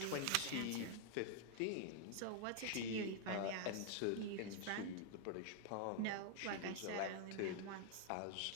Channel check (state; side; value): different; both; correlation 0.00